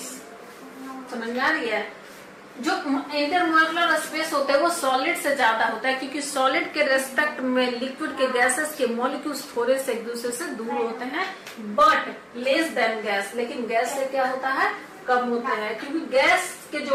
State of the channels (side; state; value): both; identical; correlation 1.00